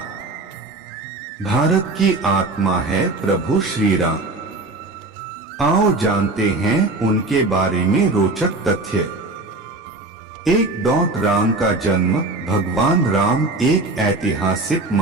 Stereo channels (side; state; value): left; quieter; 3.1 dB